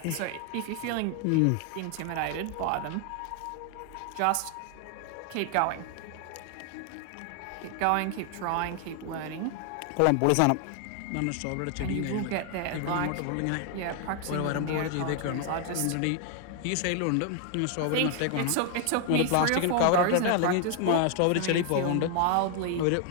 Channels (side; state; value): both; different; correlation 0.00